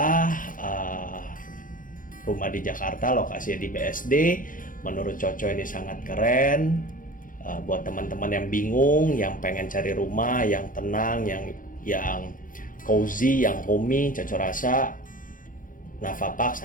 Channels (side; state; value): right; late; 0.39 ms